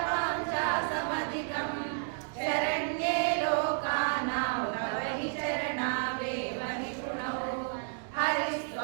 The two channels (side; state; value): left; silent; 57 dB below the other